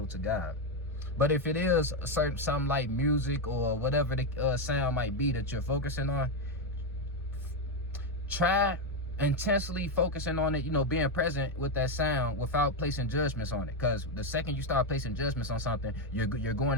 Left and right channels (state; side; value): normal; both; correlation 0.06